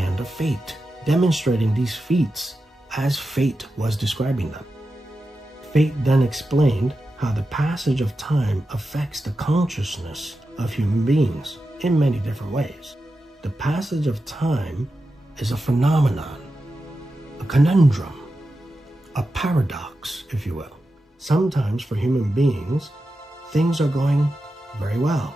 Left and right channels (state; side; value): normal; both; correlation 0.91